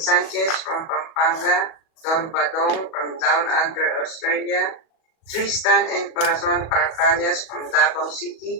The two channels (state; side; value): late; right; 37 ms